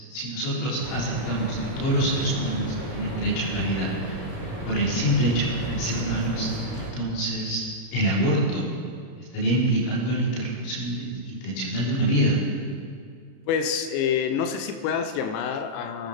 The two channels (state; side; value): late; right; 37 ms